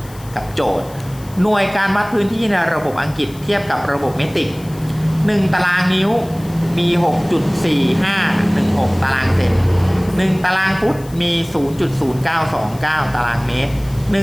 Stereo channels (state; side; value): noise; left; hiss, 22 dB below the sound